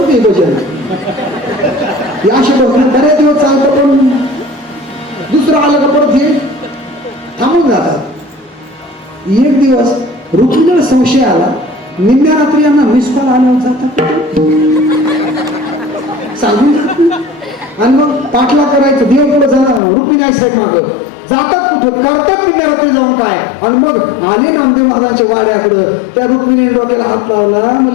ते भजन. असे बऱ्याच दिवस चालतं पण दुसरं आलं का परत हे थांबून जातात. एक दिवस रुक्मिणीला संशय आला. निम्म्या रात्री यांना मिस कॉल आल्यावर जातात सांगून आणि मग पाठला करायचं. देव पुढे जाणार रुक्मिणी आई साहेब माग जातात कुठं करतात निम्म्या रात्री जाऊन काय. आणि मग आले नामदेव महाराजांच्या वाड्याकडं. त्या रुक्मिणीने डोक्याला हात लावला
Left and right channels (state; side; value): drops out; right; at 19.8 s